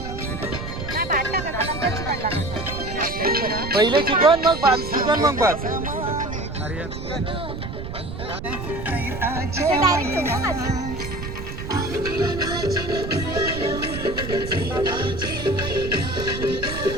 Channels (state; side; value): noise; right; rumble, 8 dB below the sound